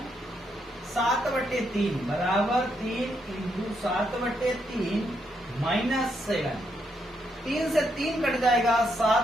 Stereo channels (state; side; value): normal; both; correlation 0.78